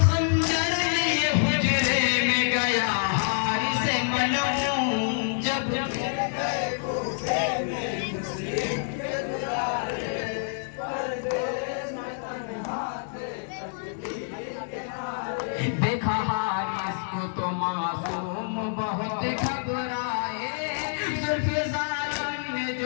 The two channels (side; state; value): right; silent; 60 dB below the other